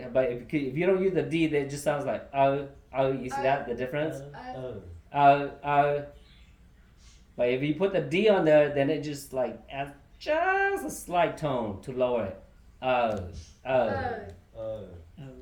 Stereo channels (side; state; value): both; identical; correlation 1.00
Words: But if you don't use the D, then it just sounds like you see that the difference? But if you put the D on there, then it just like adds just a slight tone to lower it.